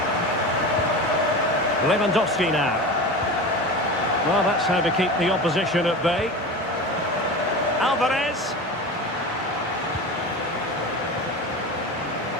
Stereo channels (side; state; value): both; normal; correlation 0.29